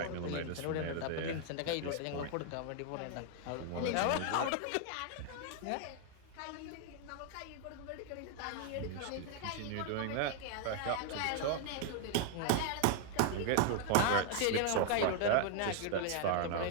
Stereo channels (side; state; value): both; different; correlation 0.00